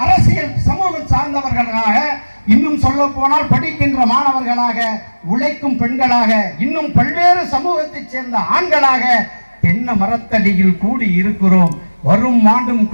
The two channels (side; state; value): both; inverted; correlation -1.00